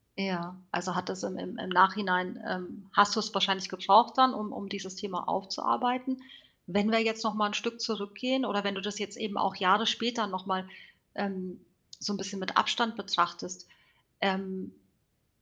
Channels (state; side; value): identical; both; correlation 1.00